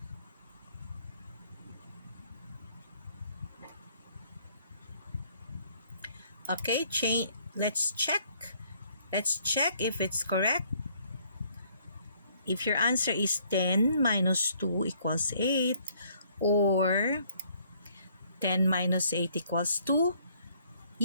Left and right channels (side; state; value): both; inverted; correlation -0.64